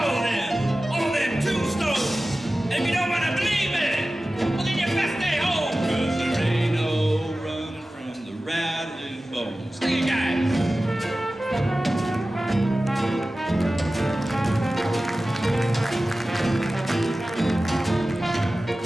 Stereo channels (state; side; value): normal; both; correlation 0.96